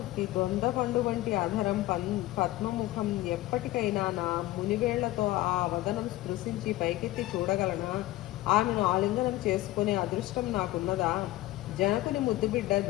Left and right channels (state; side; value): quieter; right; 17.1 dB